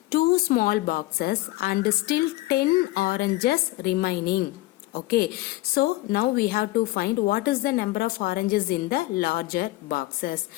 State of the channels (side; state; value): right; quieter; 18.4 dB